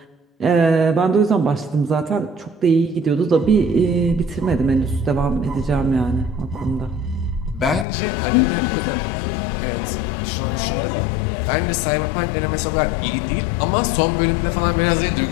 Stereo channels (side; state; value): right; drops out; at 7.9 s